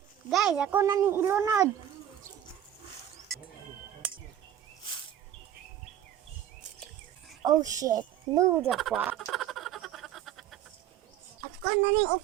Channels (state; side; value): quieter; left; 10.9 dB